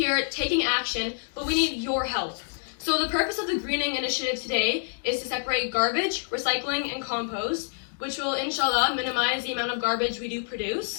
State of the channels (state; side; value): silent; right; 59 dB below the other